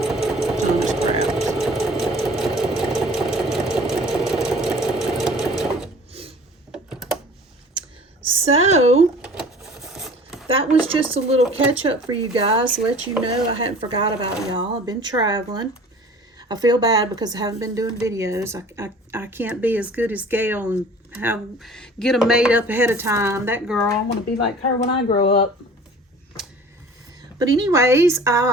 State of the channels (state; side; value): normal; both; correlation 0.46